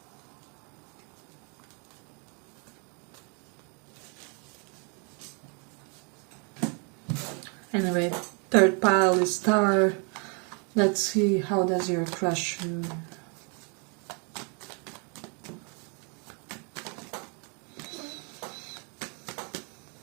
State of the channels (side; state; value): left; quieter; 35.8 dB